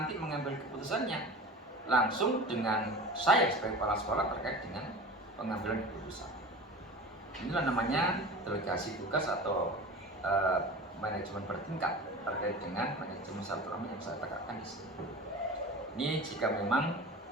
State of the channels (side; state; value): both; normal; correlation 0.35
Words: mengambil keputusannya langsung dengan saya sebagai kepala sekolah terkait dengan pengambilan keputusan. Inilah namanya delegasi tugas atau manajemen bertingkat terkait dengan manajemen silaturahmi yang saya tegakkan di sini. Ini jika memang